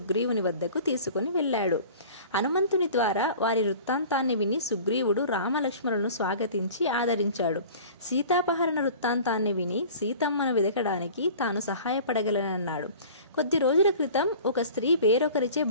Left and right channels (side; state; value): both; inverted; correlation -0.42